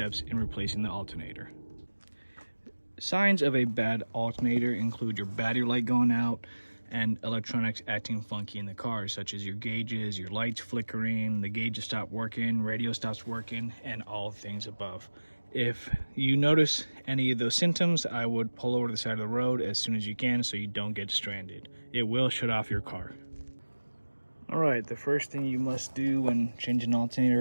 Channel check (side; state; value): both; inverted; correlation -1.00